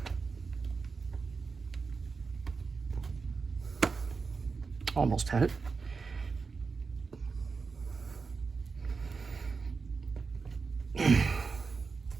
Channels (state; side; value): quieter; left; 4.7 dB